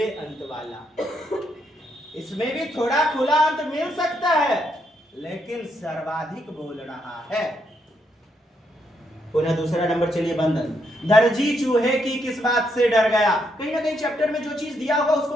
अंत वाला। इसमें भी थोड़ा खुला अंत मिल सकता है, लेकिन सर्वाधिक बोल रहा है। पुनः दूसरा नंबर चलिए। बंधन। दर्जी चूहे की किस बात से डर गया? कहीं ना कहीं चैप्टर में जो चीज दिया होगा उसको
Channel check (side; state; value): both; normal; correlation 0.77